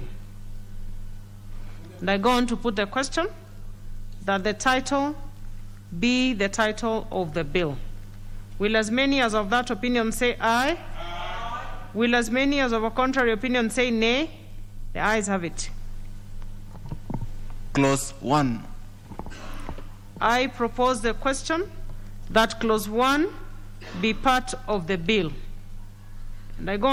And I go on to put the question that the title be the title of the bill. Will as many as of that opinion say aye? Aye. Will as many as of a contrary opinion say nay? The ayes have it. Clause 1. I propose the question that Clause 1 be part of the bill. And I go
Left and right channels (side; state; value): both; identical; correlation 1.00